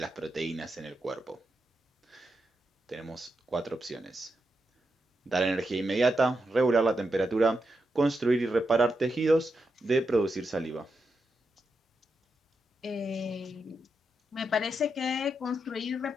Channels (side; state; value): both; normal; correlation 0.86